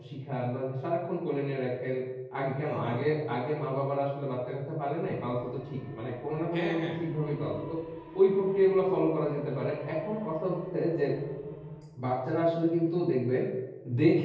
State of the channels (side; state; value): both; identical; correlation 1.00